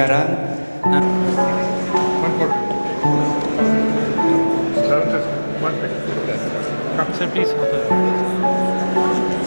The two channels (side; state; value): both; inverted; correlation -1.00